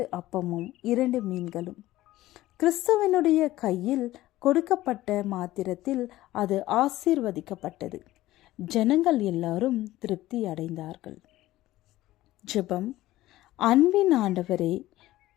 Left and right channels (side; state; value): right; quieter; 16.1 dB